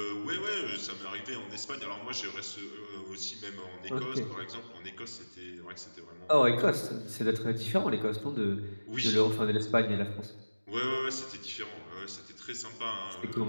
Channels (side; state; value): both; inverted; correlation -1.00